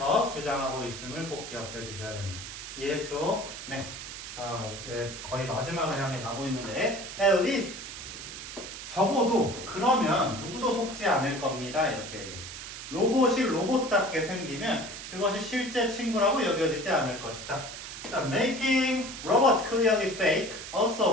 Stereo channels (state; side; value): noise; right; hiss, 10 dB below the sound